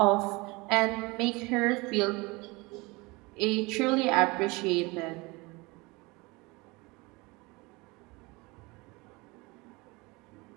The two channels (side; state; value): left; quieter; 24.6 dB